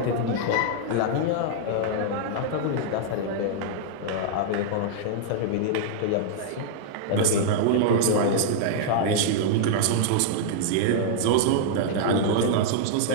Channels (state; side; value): different; both; correlation -0.01